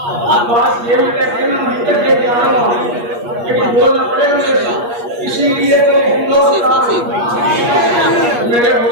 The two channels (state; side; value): late; left; 8.4 ms